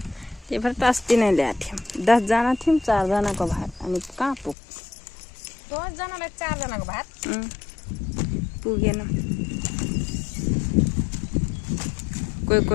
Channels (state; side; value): drops out; right; at 4.5 s